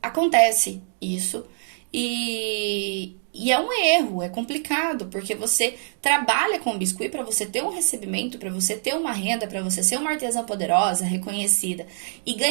acontece isso e é um erro, é complicado, porque você trabalha com biscuit para você ter um recebimento, para você ter uma renda, para você ser uma artesã poderosa, reconhecida e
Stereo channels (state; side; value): silent; left; digital silence